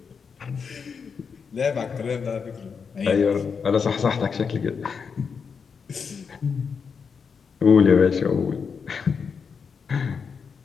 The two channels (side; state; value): right; quieter; 6.0 dB